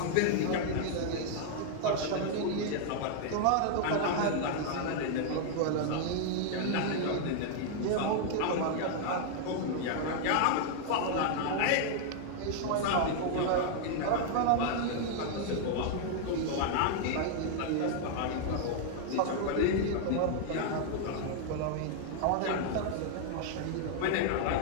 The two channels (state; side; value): different; both; correlation 0.00